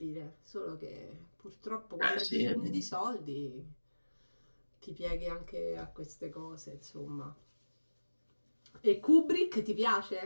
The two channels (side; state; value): both; inverted; correlation -1.00